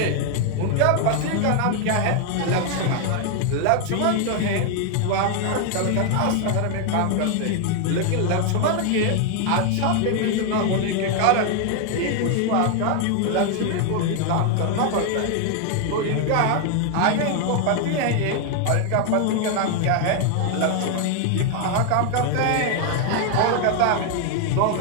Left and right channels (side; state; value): both; different; correlation 0.00